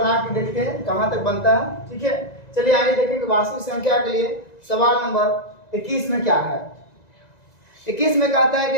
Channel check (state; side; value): late; right; 1.9 ms